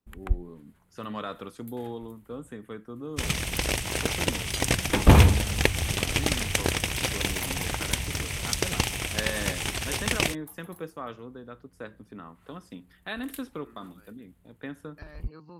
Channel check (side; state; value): both; identical; correlation 1.00